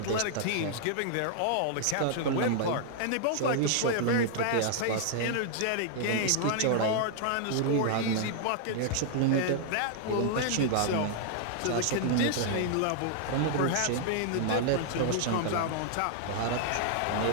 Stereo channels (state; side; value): different; both; correlation -0.01